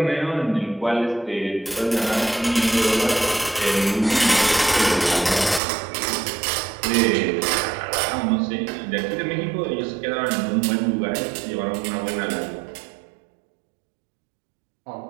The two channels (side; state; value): left; drops out; at 5.6 s